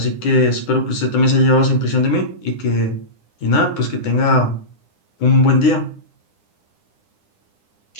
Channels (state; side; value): late; right; 9.9 ms